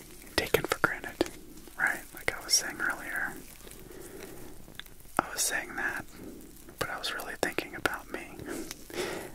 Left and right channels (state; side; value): identical; both; correlation 1.00